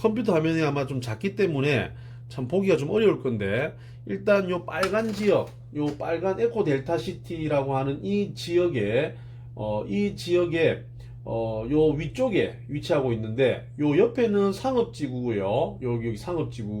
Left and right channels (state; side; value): identical; both; correlation 1.00